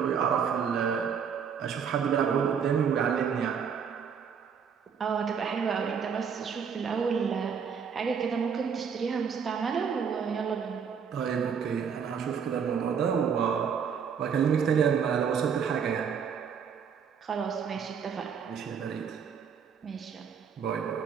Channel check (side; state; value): left; quieter; 6.9 dB